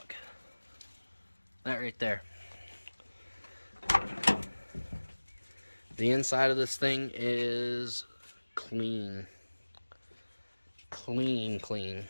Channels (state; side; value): inverted; both; correlation -1.00